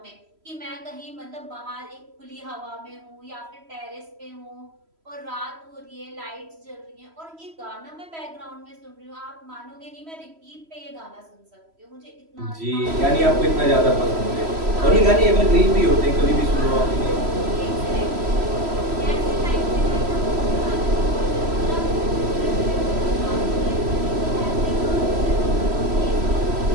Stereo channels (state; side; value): late; left; 3.1 ms